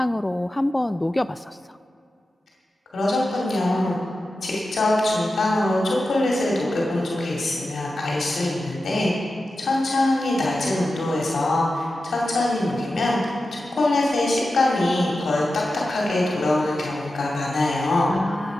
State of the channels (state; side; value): normal; both; correlation 0.92